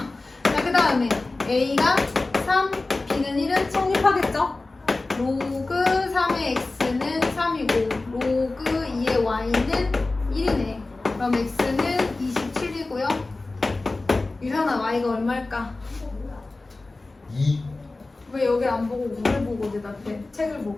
자, 그 다음에 a가 3, b는 1은 성립하겠죠? 로그 3의 x는 3이고 로그 2의 y는 1이네. 그럼 x는 27이고요. 유현아, y가 얼마일까? 2. 왜 여기 안 보고 우를 보고 대답해? 책을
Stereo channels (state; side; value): quieter; right; 3.2 dB